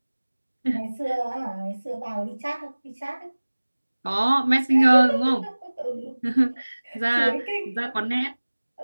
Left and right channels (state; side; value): inverted; both; correlation -1.00